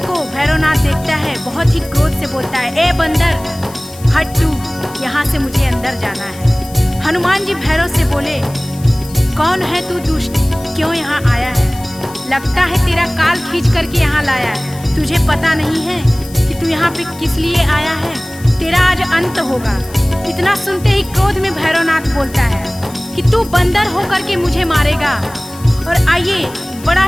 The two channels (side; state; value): left; noise; hiss, 19 dB below the sound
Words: भैरवनाथ देखता है बहुत ही क्रोध से बोलता है, ए बंदर, हट तू, यहाँ से मुझे अंदर जाना है। हनुमान जी भैरव से बोले, कौन है तू दुष्ट, क्यों यहाँ आया है? लगता है तेरा काल खींच करके यहाँ लाया है। तुझे पता नहीं है कि तू यहाँ पे किस लिए आया है? तेरा आज अंत होगा। इतना सुनते ही क्रोध में भैरवनाथ बोलता है कि तू बंदर होकर के मुझे मारेगा। और आइए, बड़ा